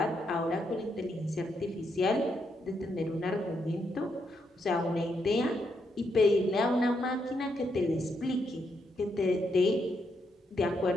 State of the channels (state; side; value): normal; both; correlation 0.79